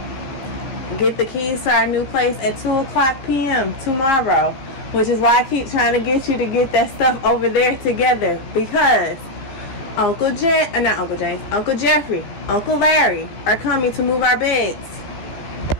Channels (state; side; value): late; right; 15 ms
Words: Get the keys to our new place at 2:00 p.m. tomorrow, which is why I keep trying to get you to get that stuff over there together, because Uncle Jeffrey, Uncle Larry are coming to move our beds